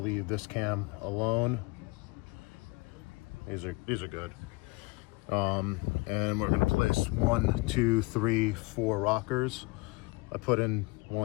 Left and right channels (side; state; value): right; quieter; 26.2 dB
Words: this cam alone. These are good. And we're gonna place 1, 2, 3, 4 rockers. I put in